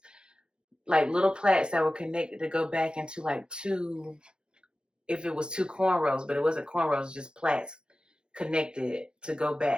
like little plaits that were connected to go back into like two, if it was two cornrows, but it wasn't cornrows, just plaits connected to go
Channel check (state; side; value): late; left; 0.049 ms